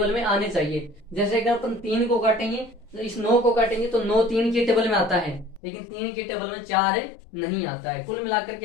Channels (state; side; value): drops out; right; at 5.6 s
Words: में आने चाहिए। जैसे अगर अपन 3 को काटेंगे तो इस 9 को काटेंगे तो 9 3 के टेबल में आता है, लेकिन 3 के टेबल में 4 नहीं आता है। कुल मिलाकर